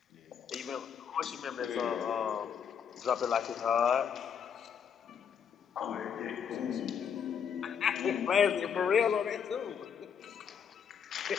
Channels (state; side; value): quieter; right; 7.4 dB